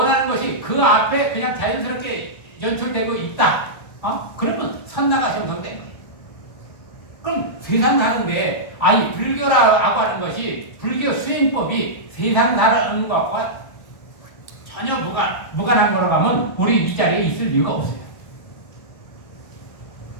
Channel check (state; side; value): late; right; 1.3 ms